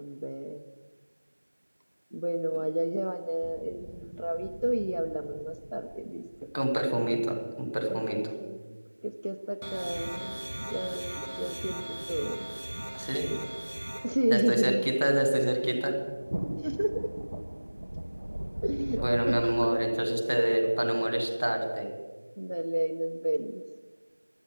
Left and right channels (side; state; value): both; inverted; correlation -1.00